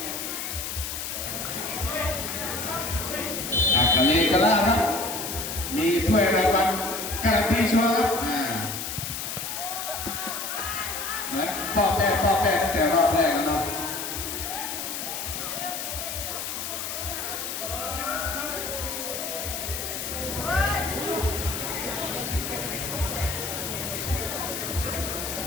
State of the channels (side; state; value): left; noise; hiss, 5 dB below the sound